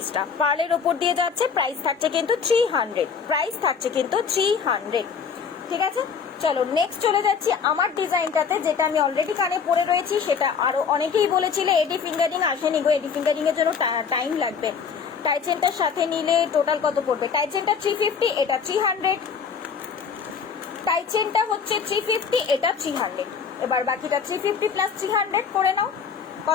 পার্লের ওপর দিয়ে যাচ্ছে, প্রাইস থাকছে কিন্তু 300, প্রাইস থাকছে কিন্তু 300, ঠিক আছে। চলো নেক্সট চলে যাচ্ছি আমার ডিজাইনটাতে, যেটা আমি অলরেডি কানে পরে রয়েছি, সেটা আরো অনেকেই বলেছিলে এডি ফিঙ্গারিং আসেনি গো, এডি ফিঙ্গারিং এর জন্য টাইম লাগবে। টাইচেনটার সাথে নিলে টোটাল কত পড়বে? টাইচেনটা 350, এটা 300, টাইচেনটা হচ্ছে 350, এটা 300, এবার বাকিটা 350 প্লাস 300 করে নাও,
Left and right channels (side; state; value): right; quieter; 6.3 dB